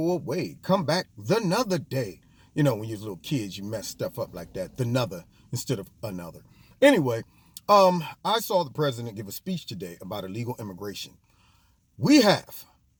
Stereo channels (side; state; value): both; identical; correlation 1.00